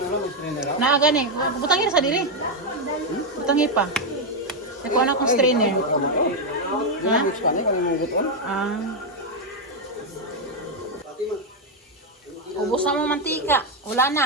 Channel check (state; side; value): normal; both; correlation 0.02